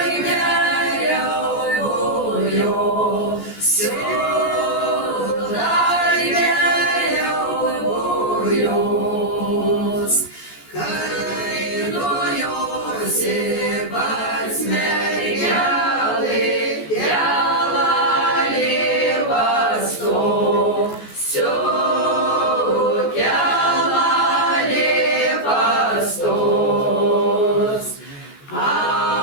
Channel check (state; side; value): late; right; 14 ms